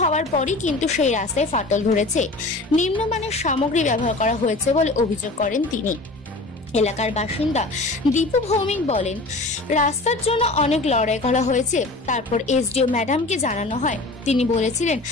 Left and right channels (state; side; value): quieter; right; 3.0 dB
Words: পরই কিন্তু সেই রাস্তায় ফাটল ধরেছে। নিম্নমানের সামগ্রী ব্যবহার করা হয়েছে বলে অভিযোগ করেন তিনি। এলাকার বাসিন্দা দীপু ভৌমিক বলেন, রাস্তার জন্য অনেক লড়াই করা হয়েছে। তারপর এসডিও ম্যাডামকে জানানো হয়। তিনি বলেছিলেন